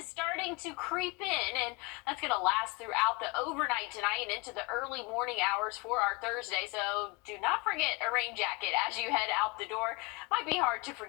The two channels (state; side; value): quieter; right; 25.2 dB